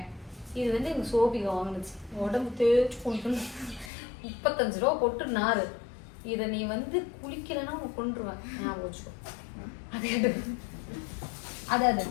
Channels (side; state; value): right; drops out; at 3.9 s